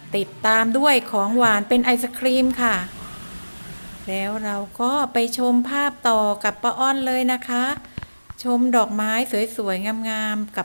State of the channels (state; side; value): inverted; both; correlation -1.00